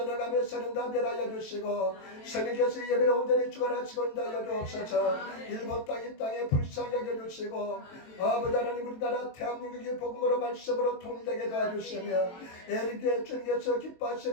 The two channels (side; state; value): right; late; 23 ms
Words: 어감의 선은 다 멸하여 주시고 성령께서 예배를 온전히 주관하시고 인도하여 주옵소서. 일본 땅 이 땅에 불쌍히 여겨주시고 아버지 하나님 우리나라 대한민국의 복음으로 말씀으로 통일되게 도와주시며 에릭의 주님께서